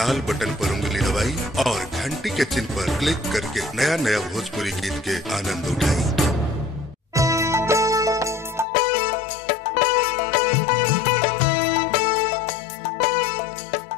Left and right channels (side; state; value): right; drops out; at 8.7 s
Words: बटन पर उंगली दबाई और घंटी के चिन्ह पर क्लिक करके नया नया भोजपुरी गीत के आनंद उठाई।